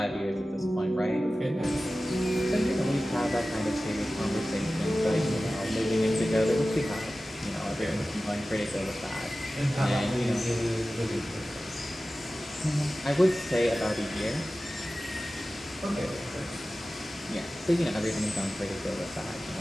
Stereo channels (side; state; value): both; normal; correlation 0.95